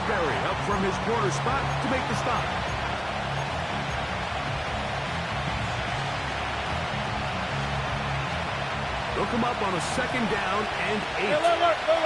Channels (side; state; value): both; identical; correlation 1.00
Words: up from his corner spot to make the stop. They'll come up on a 2nd down and 8.